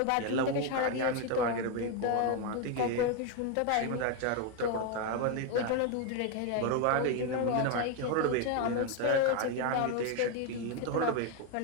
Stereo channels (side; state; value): both; different; correlation 0.02